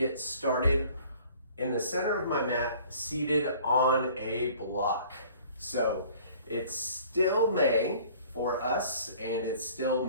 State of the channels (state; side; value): inverted; both; correlation -0.52